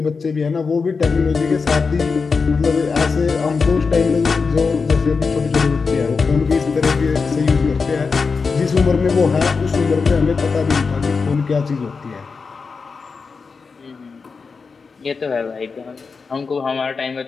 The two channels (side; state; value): right; quieter; 4.9 dB